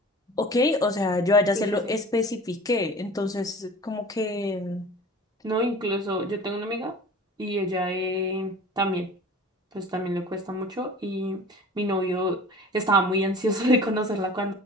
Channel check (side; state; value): both; normal; correlation 0.41